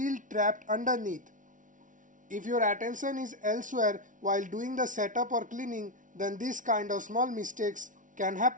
trapped underneath. If your attention is elsewhere while doing the setup or cleaning, then this kind of small mistakes can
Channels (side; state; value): left; late; 0.38 ms